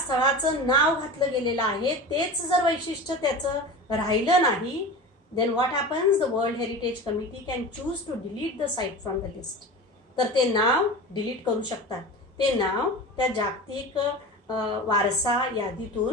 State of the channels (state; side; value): normal; both; correlation 0.31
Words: नाव घातलं गेलेलं आहे तेच जर वैशिष्ट्य त्याचं राहिलं नाही, then what happens? The world Heritage Committee can choose to delete the site from the list. तर ते नाव डिलीट करू शकतात. ते नाव त्या जागतिक वारसा